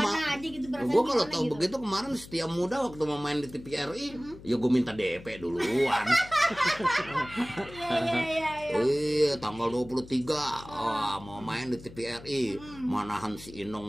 gitu, gua kalau tahu begitu kemarin Setia Muda waktu mau main di TVRI, ya gua minta DP duluan. Iya, tanggal 23 mau main di TVRI. Manahan si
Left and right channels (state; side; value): noise; left; hum, 17 dB below the sound